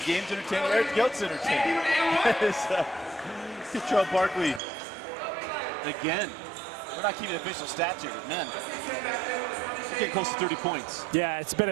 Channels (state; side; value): drops out; left; at 4.6 s